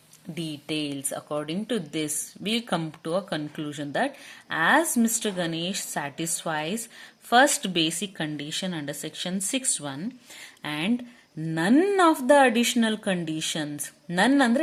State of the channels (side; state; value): both; identical; correlation 1.00